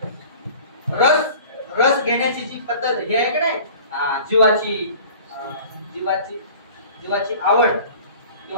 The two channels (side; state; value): both; inverted; correlation -0.44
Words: रस घेण्याची जी पद्धत ही आहे की नाही, जीवाची आवड